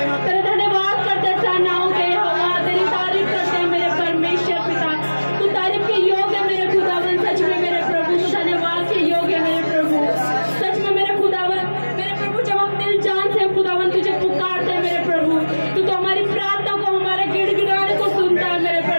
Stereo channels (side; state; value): both; inverted; correlation -1.00